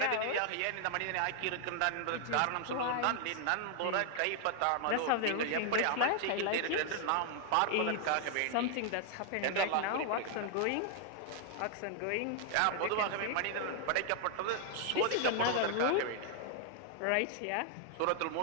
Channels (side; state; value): both; different; correlation 0.00